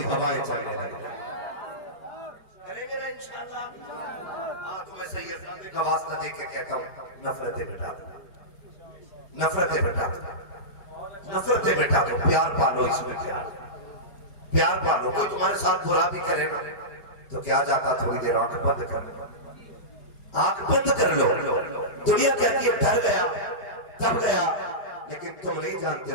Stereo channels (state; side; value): late; right; 4.8 ms